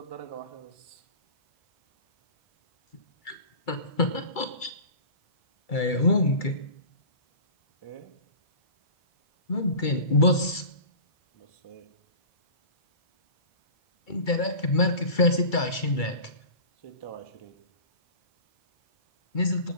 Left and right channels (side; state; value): right; late; 2.3 ms